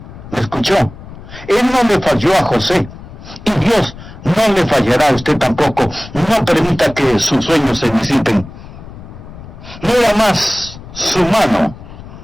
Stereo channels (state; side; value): noise; left; rumble, 16 dB below the sound